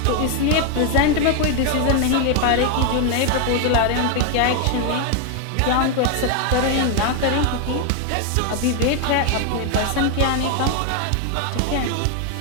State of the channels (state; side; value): different; both; correlation 0.01